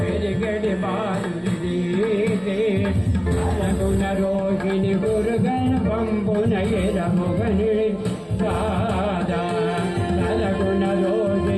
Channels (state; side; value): identical; both; correlation 1.00